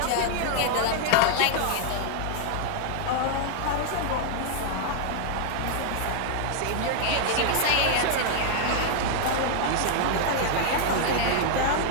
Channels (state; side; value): different; both; correlation -0.01